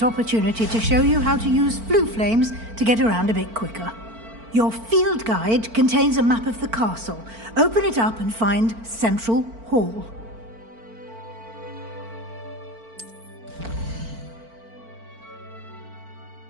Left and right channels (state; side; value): late; left; 4.4 ms